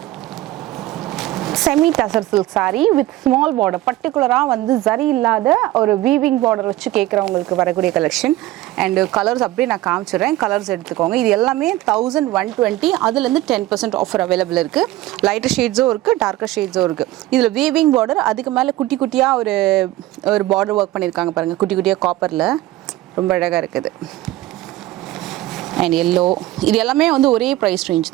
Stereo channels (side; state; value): left; quieter; 16.2 dB